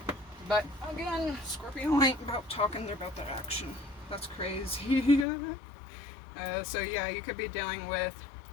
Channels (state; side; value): drops out; right; at 5.2 s